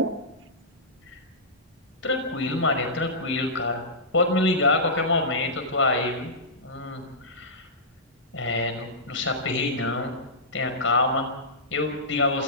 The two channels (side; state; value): both; normal; correlation -0.17